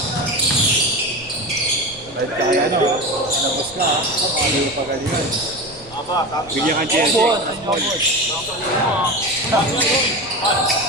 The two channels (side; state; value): right; noise; rumble, 23 dB below the sound